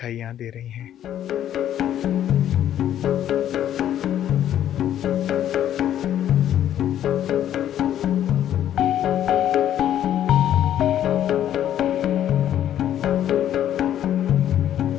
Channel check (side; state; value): right; quieter; 11.0 dB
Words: यहाँ दे रही हैं।